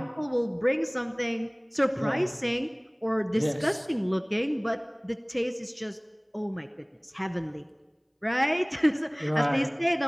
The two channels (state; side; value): identical; both; correlation 1.00